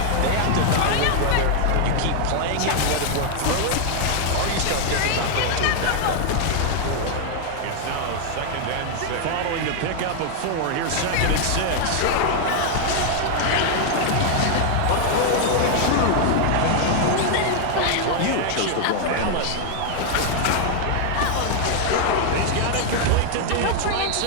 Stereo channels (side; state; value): both; different; correlation 0.00